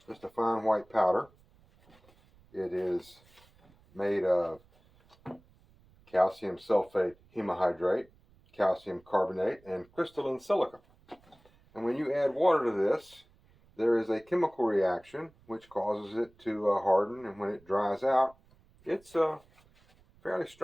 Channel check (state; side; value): noise; right; rumble, 30 dB below the sound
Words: Just a fine white powder. It is made of calcium sulfate hemohydrate, calcium carbonate, and crystalline silica. And when you add water to this, there is a chemical reaction which causes it to harden, and when it dries out, it's a fairly